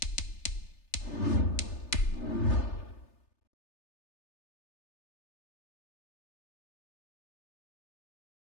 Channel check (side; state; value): right; late; 3.3 ms